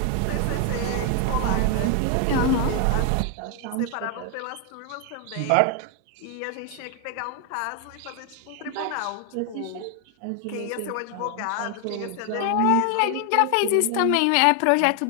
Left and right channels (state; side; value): different; both; correlation 0.00